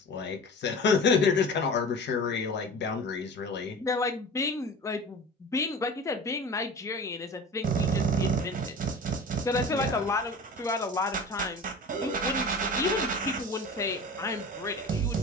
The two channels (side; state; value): both; normal; correlation 0.36